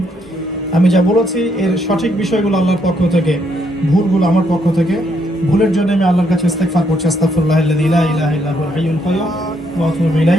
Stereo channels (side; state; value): both; normal; correlation 0.74